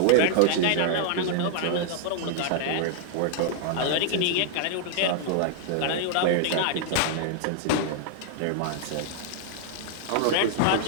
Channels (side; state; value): both; different; correlation -0.01